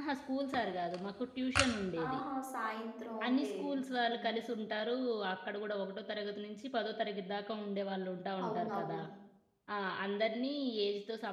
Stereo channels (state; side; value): identical; both; correlation 1.00